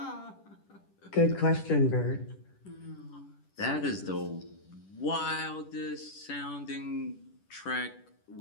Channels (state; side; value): late; right; 10 ms